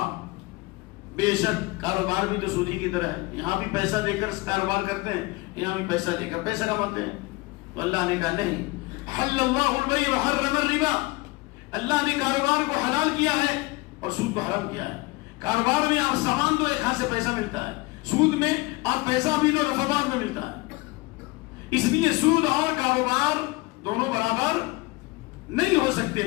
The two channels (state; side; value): quieter; right; 23.6 dB